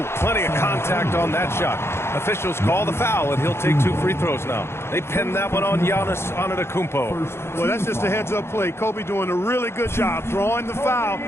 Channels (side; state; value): right; late; 0.12 ms